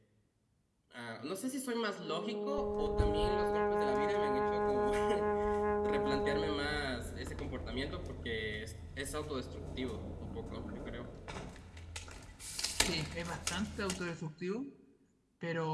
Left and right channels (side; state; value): both; identical; correlation 1.00